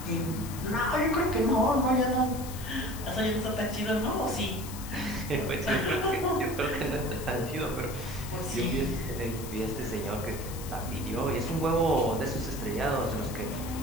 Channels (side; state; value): left; noise; hiss, 13 dB below the sound